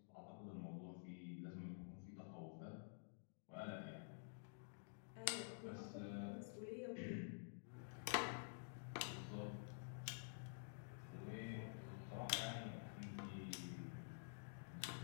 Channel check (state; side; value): silent; right; digital silence